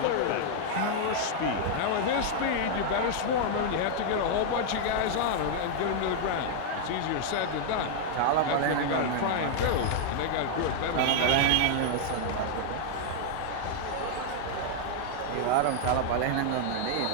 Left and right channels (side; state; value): both; different; correlation -0.01